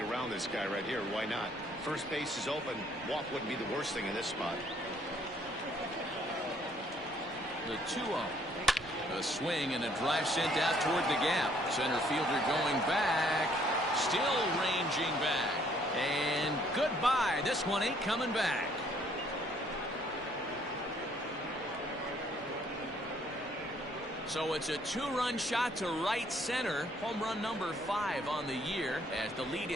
this guy right here. Why not? First base is open. Walk wouldn't be the worst thing in this spot. The 2-0. A swing and a drive sent out toward the gap. Center fielder going back. Still ranging back. And goodbye. This one ain't coming back. So it's a two-run shot to right center. Home run number 5 on the year as the lead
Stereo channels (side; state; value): left; noise; rumble, 21 dB below the sound